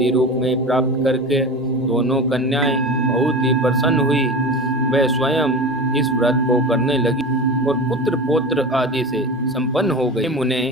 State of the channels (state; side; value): normal; both; correlation 0.29